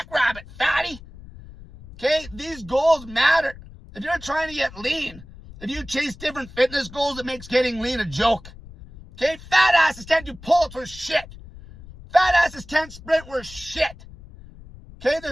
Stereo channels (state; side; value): noise; left; rumble, 18 dB below the sound